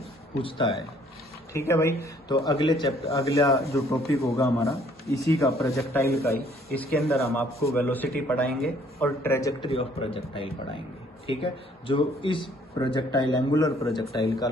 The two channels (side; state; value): both; normal; correlation 0.61